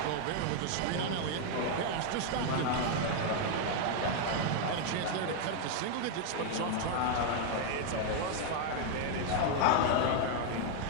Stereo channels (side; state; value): both; different; correlation 0.00